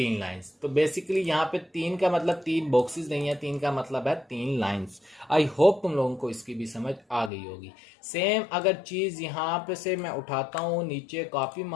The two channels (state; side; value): drops out; right; at 7.3 s